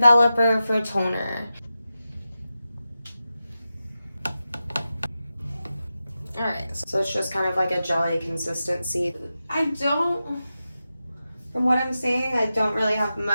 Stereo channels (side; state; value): both; inverted; correlation -0.91